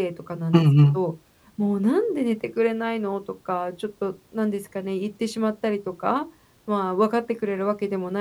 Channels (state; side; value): identical; both; correlation 1.00